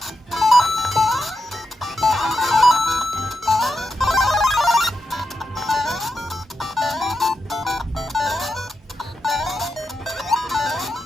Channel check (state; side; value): normal; both; correlation 0.87